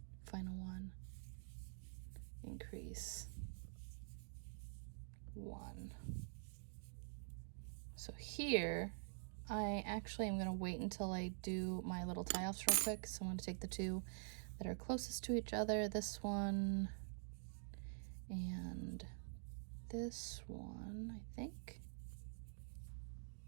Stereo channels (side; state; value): left; silent; digital silence